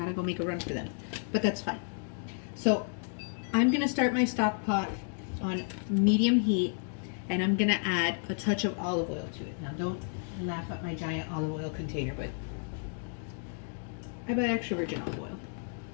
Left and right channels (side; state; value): right; silent; 57 dB below the other